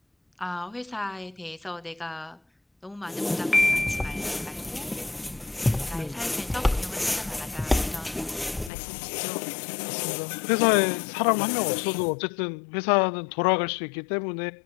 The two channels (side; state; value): right; drops out; at 8.7 s